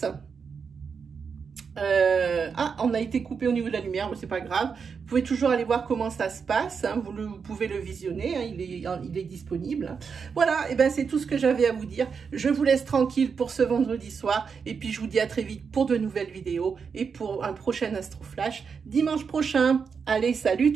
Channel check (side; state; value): left; quieter; 5.9 dB